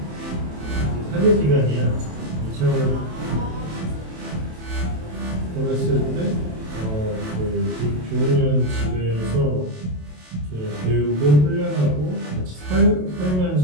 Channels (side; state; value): left; late; 27 ms